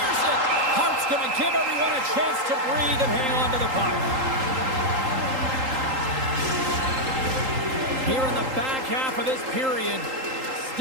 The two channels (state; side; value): late; left; 3.8 ms